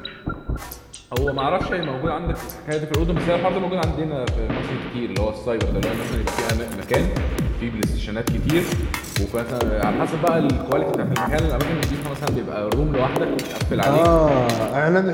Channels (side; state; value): both; identical; correlation 1.00